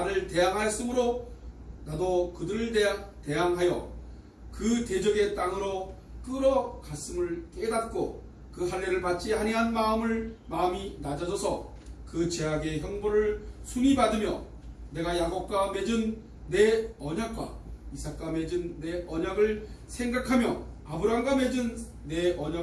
대항하였으므로 나도 그들을 대항하여 그 대적의 땅으로 끌어갔음을 깨닫고 그 할례를 받지 아니한 마음이 낮아져서 그 죄악의 형벌을 순히 받으며 내가 야곱과 맺은 내 언약과 이삭과 맺은 내 언약을 생각하며 아브라함과 맺은 내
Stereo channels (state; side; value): identical; both; correlation 1.00